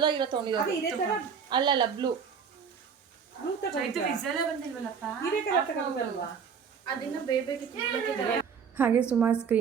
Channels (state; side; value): quieter; left; 6.6 dB